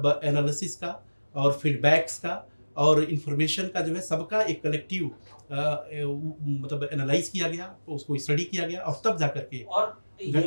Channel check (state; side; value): inverted; both; correlation -1.00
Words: एनालिसिस का और फीडबैक्स का और इन्फॉर्मेशन का जो है सबका एक कलेक्टिव मतलब एनालाइज़ किया गया, उसको स्टडी किया गया और तब जाकर के और ये